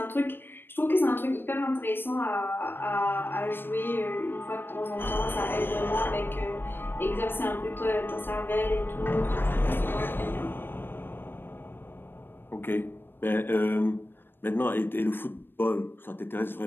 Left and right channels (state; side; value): late; right; 0.099 ms